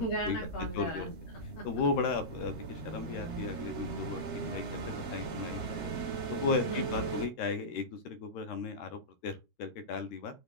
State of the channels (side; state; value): right; late; 13 ms